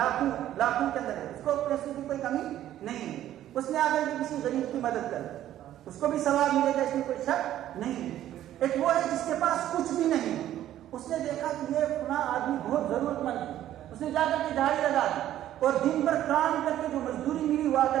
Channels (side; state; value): left; quieter; 12.4 dB